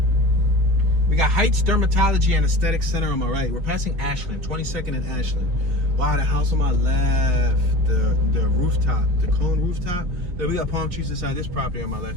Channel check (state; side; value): late; left; 5.6 ms